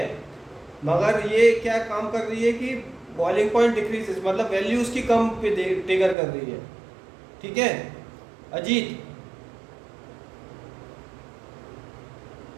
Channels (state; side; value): drops out; left; at 6.2 s